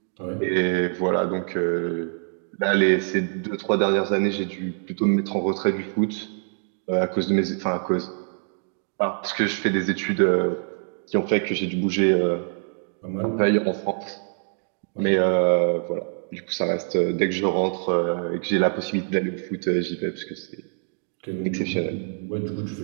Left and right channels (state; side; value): silent; left; 62 dB below the other